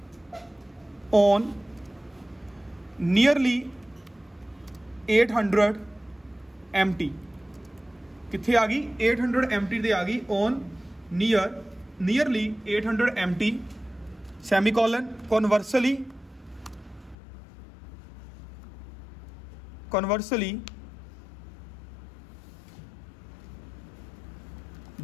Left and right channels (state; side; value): drops out; right; at 17.2 s